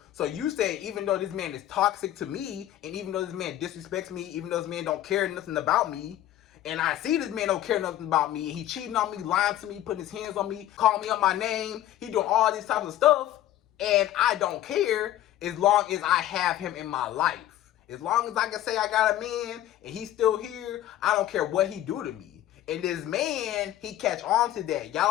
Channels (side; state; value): right; quieter; 13.1 dB